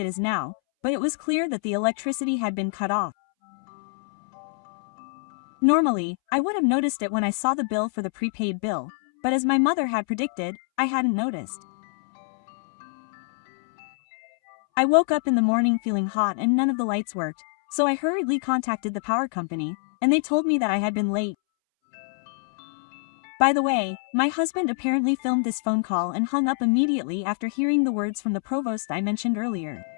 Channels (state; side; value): silent; right; 62 dB below the other